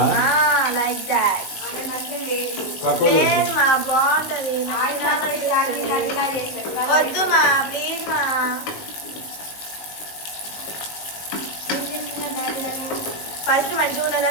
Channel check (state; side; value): late; right; 19 ms